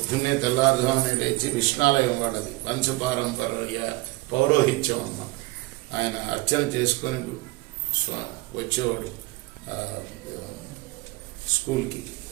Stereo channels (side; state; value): left; quieter; 22.4 dB